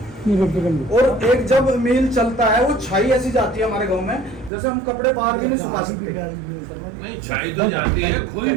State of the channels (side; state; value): left; drops out; at 4.5 s